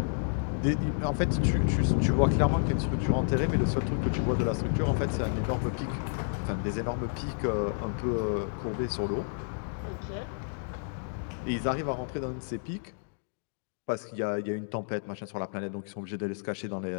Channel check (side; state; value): right; silent; digital silence